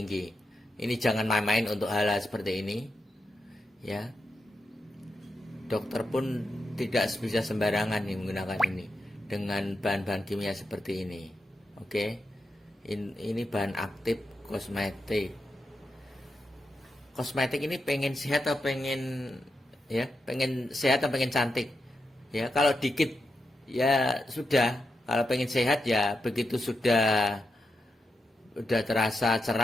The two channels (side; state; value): both; normal; correlation 0.87